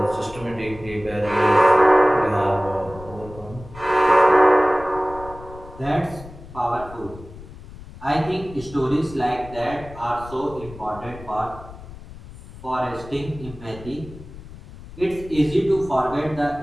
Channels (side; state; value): left; noise; rumble, 16 dB below the sound